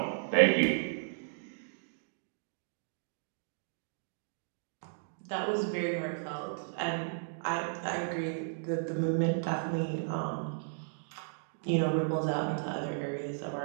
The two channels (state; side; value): silent; left; digital silence